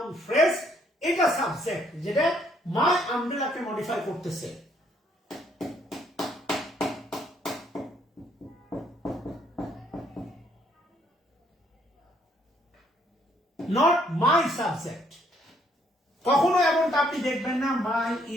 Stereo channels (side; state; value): both; normal; correlation 0.68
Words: ফ্রেজ, এটা সাবজেক্ট, যেটা মাই আমব্রেলাকে মডিফাই করতেছে। Not my subject. কখনো এমনটা আপনি দেখবেন না মাই